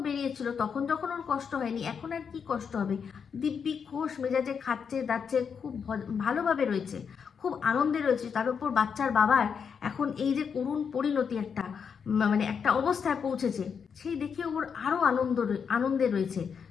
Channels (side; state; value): right; quieter; 6.6 dB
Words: বেরিয়েছিল তখন যখন ওর কষ্ট হয়নি, এখন আর কি কষ্ট হবে? দিব্যি খোশ মেজাজে খাচ্ছে দাচ্ছে, খুব ভালোভাবে রয়েছে, খুব আনন্দে রয়েছে। তার উপর বাচ্চার বাবার এখন এই যে করুণ পরিণতি, একটা মানে একটা অবস্থায় পৌঁছেছে, সেই দেখে ওর আরও আনন্দে রয়েছে।